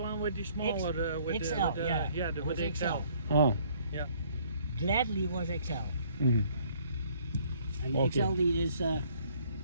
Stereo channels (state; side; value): inverted; both; correlation -0.61